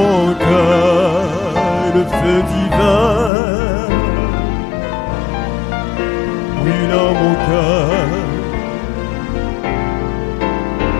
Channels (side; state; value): right; drops out; at 3.3 s